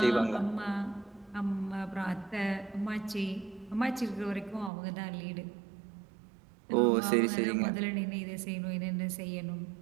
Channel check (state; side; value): drops out; left; at 4.7 s